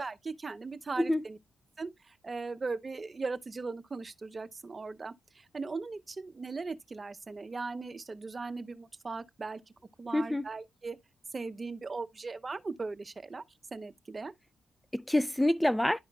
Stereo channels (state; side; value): normal; both; correlation 0.96